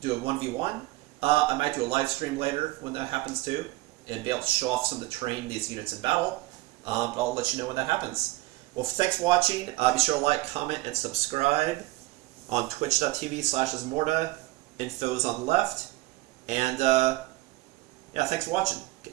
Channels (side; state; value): left; quieter; 19.7 dB